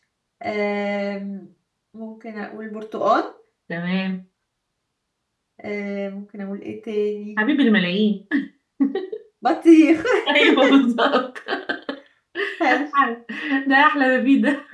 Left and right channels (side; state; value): both; identical; correlation 1.00